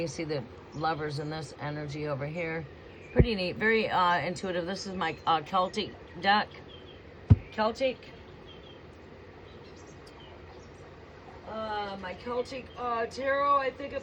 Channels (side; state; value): both; identical; correlation 1.00